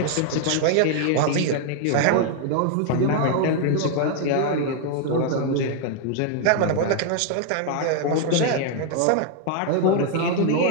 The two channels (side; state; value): both; different; correlation 0.00